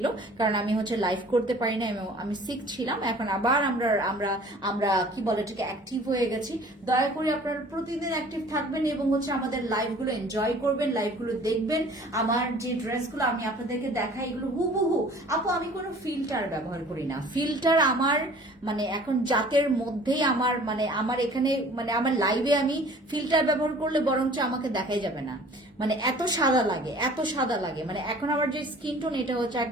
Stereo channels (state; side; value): normal; both; correlation 0.49